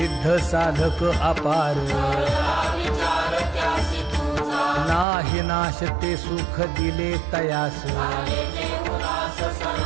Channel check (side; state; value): left; drops out; at 5.1 s